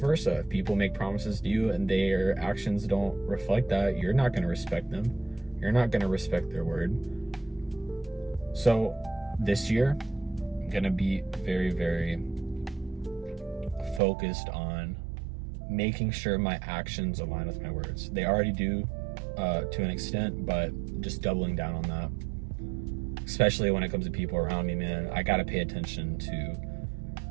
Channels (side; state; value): left; drops out; at 14.0 s